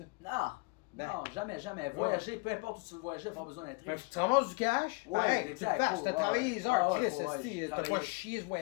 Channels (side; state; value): right; quieter; 28.2 dB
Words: Non, Ben. non, jamais. Voyager, peu importe où tu veux voyager, pas besoin d'être Mais riche. tu ramasses du cash, Ouais, pareil, tu le exact, fasses, cool, t'as ouais, travaillé ouais. les heures, Ah ouais, Chris, ouais, esti, j'ai t'as pas travaillé. chié ce